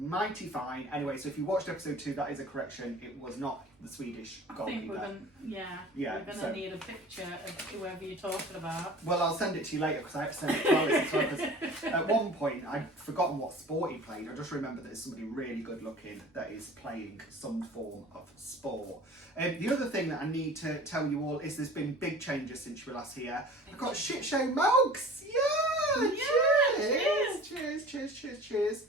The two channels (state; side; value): normal; both; correlation 0.42